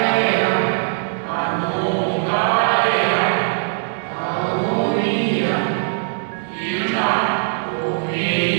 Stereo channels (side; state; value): left; silent; digital silence